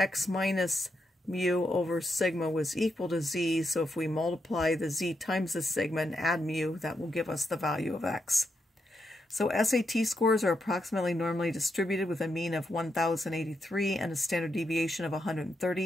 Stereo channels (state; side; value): normal; both; correlation 0.83